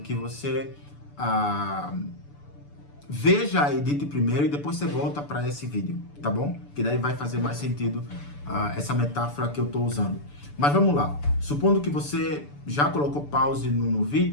você veja a edit primeiro e depois você volta para esse vídeo, tá bom? Que daí vai fazer mais sentido essa metáfora que eu estou usando. Mas vamos lá. Supondo que você já colocou pause no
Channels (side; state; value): right; late; 6.9 ms